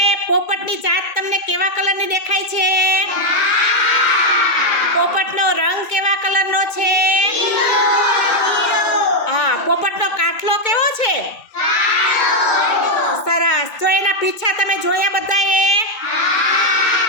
પોપટની જાત તમને કેવા કલરની દેખાય છે? પોપટનો રંગ કેવા કલરનો છે? હા, પોપટનો કાઠલો કેવો છે? સરસ. જો એના પીછા તમે જોયા બધાએ?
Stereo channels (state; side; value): late; right; 2.2 ms